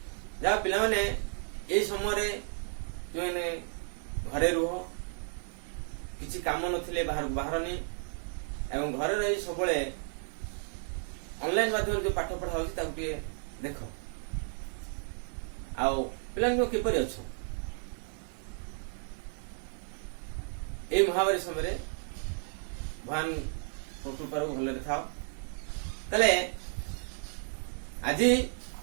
जहा पिला माने एई समय जो घरे रुह, किछि काम नथिले बाहर बाहरनी एवं घरे रही सबले ऑनलाइन माध्यम जो पाठ पढ़ा होछि ताकु टिके देख आउ पिलांको किपरि अछो। ए महामारी समय भगवान कृपार भले था। तले आज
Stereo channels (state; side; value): silent; left; 56 dB below the other